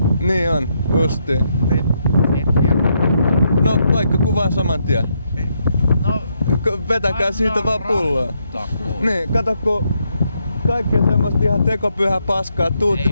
Niin on, justiin. No, vaikka kuvaan saman tien. No, vetäkää siitä vaan pulloa. Niin, kato kun kaikkea semmoista ihan tekopyhää paskaa tuutti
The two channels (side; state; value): both; inverted; correlation -0.77